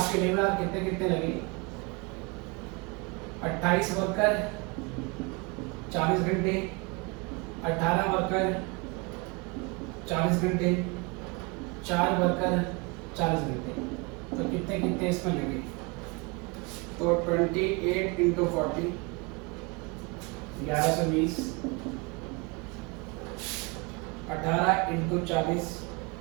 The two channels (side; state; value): left; quieter; 28.1 dB